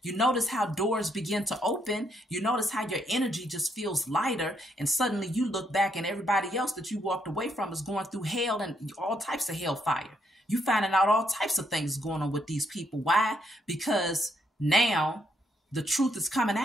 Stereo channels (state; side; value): normal; both; correlation 0.75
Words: You notice how doors begin to open. You notice how your energy just feels lighter. And suddenly you look back and everybody else that you walked away from is going through hell and all types of hellfire. You finding out all types of things going on with these people. Why? Because now the truth is coming